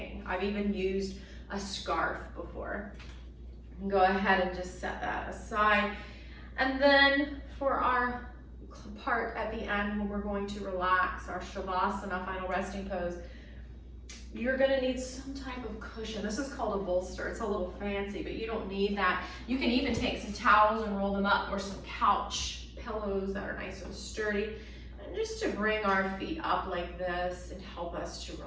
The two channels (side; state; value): both; identical; correlation 1.00